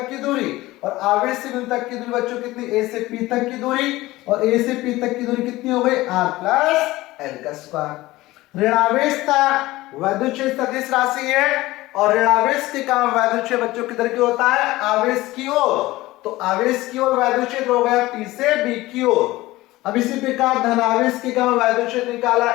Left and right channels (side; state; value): right; quieter; 18.4 dB